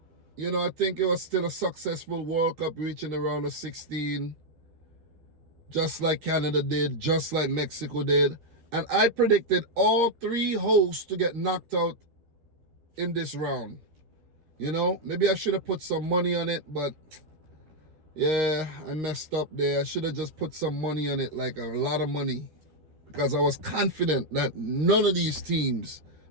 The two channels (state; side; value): late; left; 13 ms